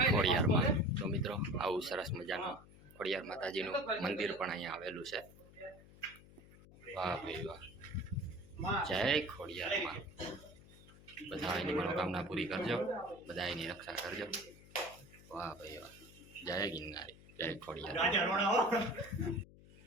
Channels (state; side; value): noise; left; hum, 21 dB below the sound